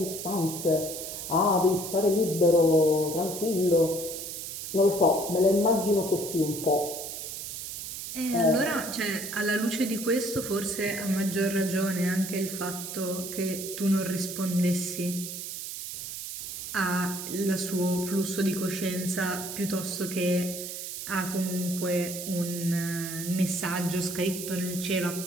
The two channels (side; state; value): right; noise; hiss, 7 dB below the sound